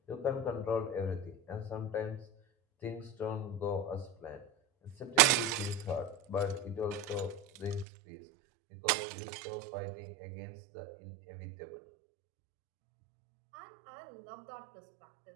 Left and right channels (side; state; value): left; drops out; at 7.9 s